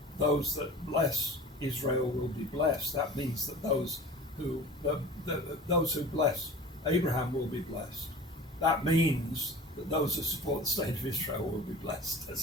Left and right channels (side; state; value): both; normal; correlation 0.39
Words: those that bless Israel will be blessed, that means that those who bless Abraham will be blessed. That means that those who support the state of Israel will be blessed.